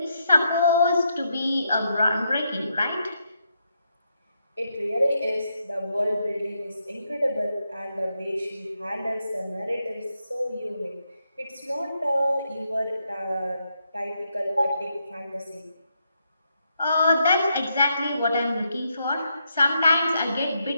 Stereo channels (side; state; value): both; inverted; correlation -0.80